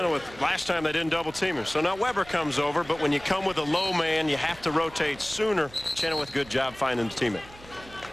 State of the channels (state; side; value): noise; right; hum, 21 dB below the sound